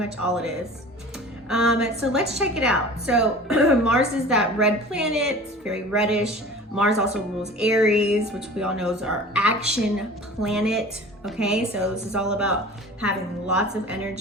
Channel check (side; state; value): both; normal; correlation 0.41